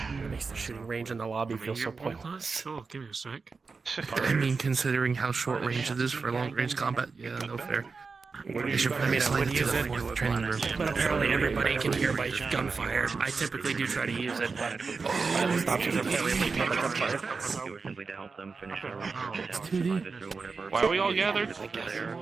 It makes the shooting range in the lobby feel so pointless. Oh, give me a sec. I mean, considering how short range it is for long range combat, yeah, no fair. They should probably slide it to the fourth training room. But apparently everybody can hear by gunfire. I typically do try to use it, but options are fairly limited by gunfire. Simply to help them finish their Why are we all gathered?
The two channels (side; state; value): left; quieter; 4.6 dB